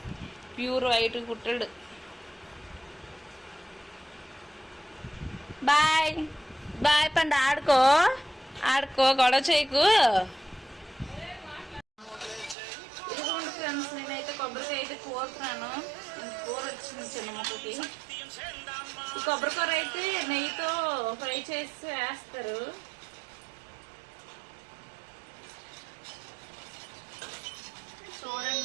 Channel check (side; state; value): left; drops out; at 12.6 s